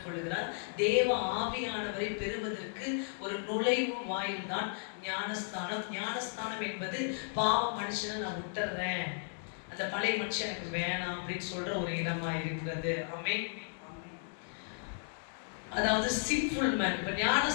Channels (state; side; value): silent; right; digital silence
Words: கொள்கிறார். தேவ ஆவியானவரை பெறுவதற்கு ஒரு நுழைவு வாயில் தான் ஞானஸ்தானம். ஞானஸ்தானம் என்பது பாவ மனுஷனை நான் விட்டுறேன், அந்த பழைய மனுஷன் எனக்கு வேணாம் அப்படின்னு சொல்ற ஒரு இடமா இருக்கிறது. ஆமென். அதாவது சின்ஃபுல் மேன். இப்ப